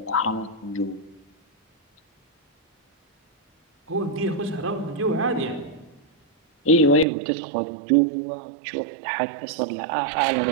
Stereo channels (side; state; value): left; drops out; at 7.1 s